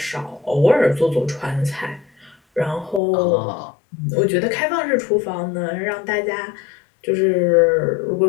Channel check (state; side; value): drops out; right; at 3.0 s